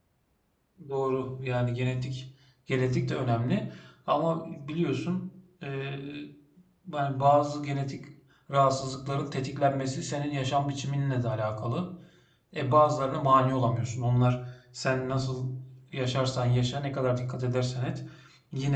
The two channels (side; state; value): both; identical; correlation 1.00